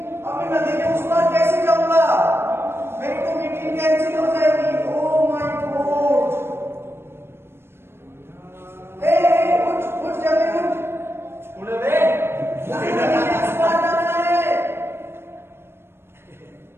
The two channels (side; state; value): left; late; 0.12 ms